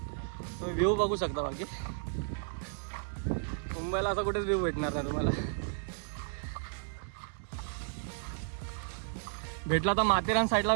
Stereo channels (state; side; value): silent; left; 56 dB below the other